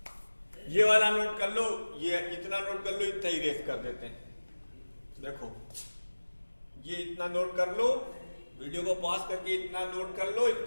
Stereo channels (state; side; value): inverted; both; correlation -1.00